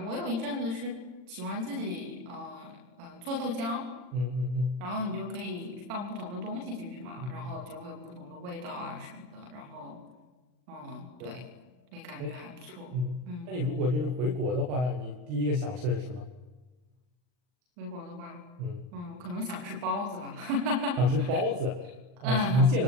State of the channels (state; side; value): late; left; 40 ms